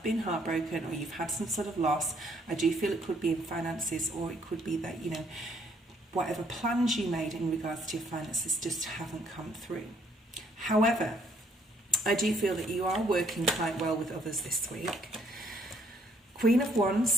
been heartbroken, or you've had some sort of loss. I do feel it could be in finances, or it could be that whatever plans you made in regards to your finances just haven't come through. However, I do feel that you are working quite well with others this week. Queen of Wands,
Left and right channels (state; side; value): normal; both; correlation 0.66